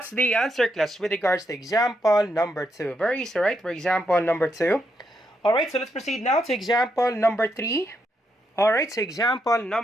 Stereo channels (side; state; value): both; normal; correlation 0.80